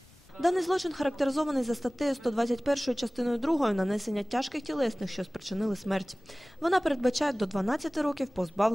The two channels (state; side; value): noise; left; rumble, 28 dB below the sound